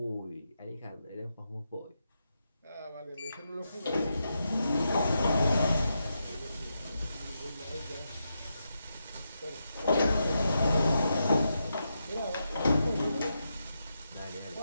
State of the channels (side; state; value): both; inverted; correlation -0.85